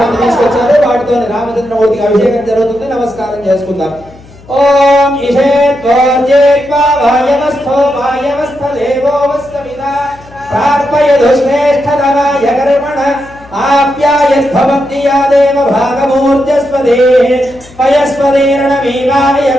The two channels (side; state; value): left; noise; hum, 23 dB below the sound